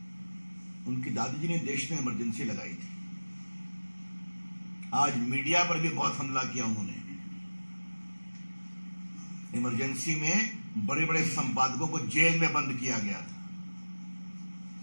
उनकी दादी जी ने देश में इमरजेंसी लगाई थी। आज मीडिया पर भी बहुत हमला किया उन्होंने। इमरजेंसी में बड़े बड़े संपादकों को जेल में बंद किया गया था,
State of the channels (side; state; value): both; inverted; correlation -1.00